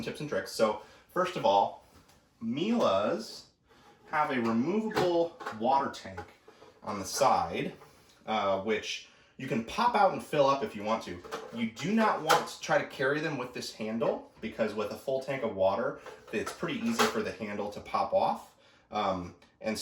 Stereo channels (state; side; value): identical; both; correlation 1.00